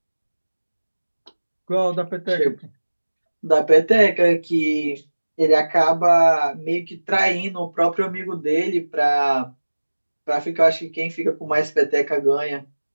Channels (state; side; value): inverted; both; correlation -1.00